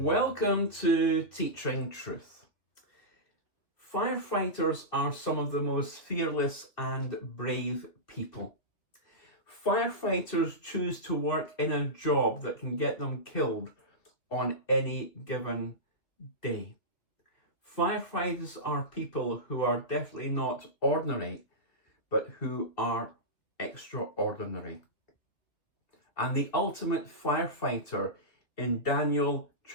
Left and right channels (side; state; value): right; late; 2.9 ms